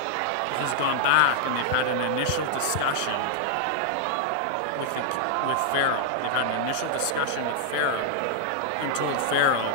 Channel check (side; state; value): both; different; correlation -0.01